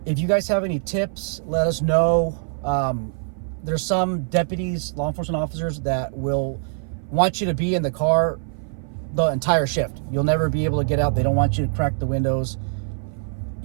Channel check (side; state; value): left; silent; 57 dB below the other